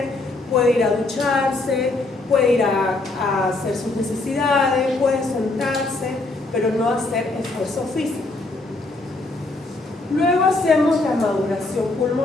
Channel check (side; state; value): right; quieter; 3.1 dB